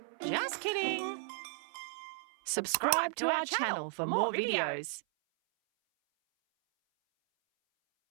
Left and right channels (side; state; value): left; silent; 55 dB below the other